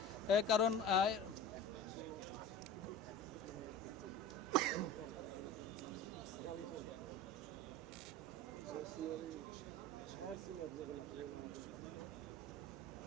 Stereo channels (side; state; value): both; normal; correlation 0.35